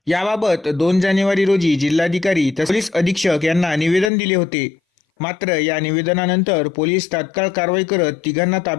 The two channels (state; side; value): drops out; right; at 4.1 s